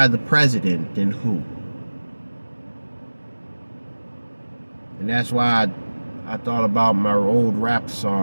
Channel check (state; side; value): inverted; both; correlation -1.00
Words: the president, then who? And that's why I thought about my old rap